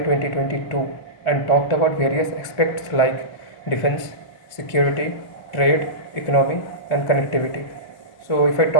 and talked about various aspects like defense, security, trade, economy, and connectivity. So, if I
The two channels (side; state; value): right; late; 1.7 ms